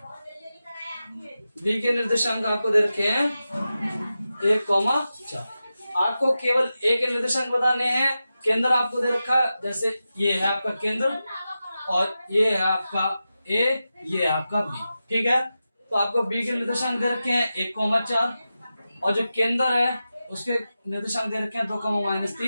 बी के निर्देशांक आपको दे रखे हैं 1,4। आपको केवल ए के निर्देशांक बताने हैं। केंद्र आपको दे रखा है, जैसे ये है आपका केंद्र, और ये है आपका ए, ये है आपका बी। ठीक है, तो आपको बी के निर्देशांक दे रखे हैं 1,4, और जो केंद्र है उसके निर्देशांक दे रखे हैं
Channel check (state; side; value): inverted; both; correlation -0.92